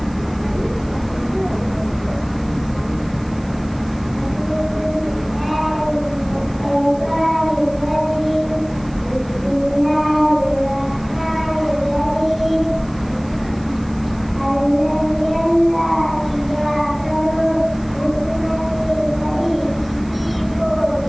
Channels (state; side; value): noise; right; hiss, 26 dB below the sound